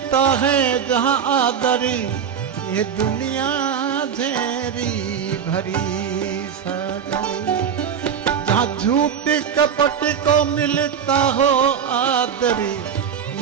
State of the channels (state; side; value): quieter; left; 7.8 dB